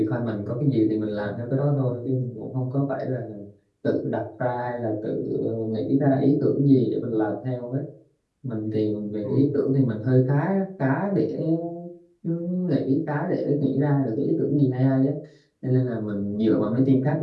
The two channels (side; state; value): both; identical; correlation 1.00